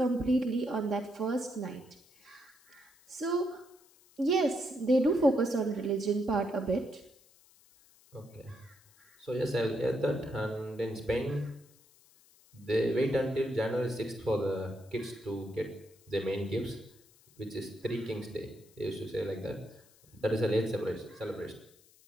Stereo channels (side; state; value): left; noise; hiss, 28 dB below the sound